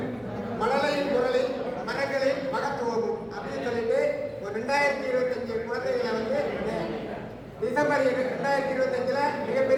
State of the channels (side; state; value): both; identical; correlation 1.00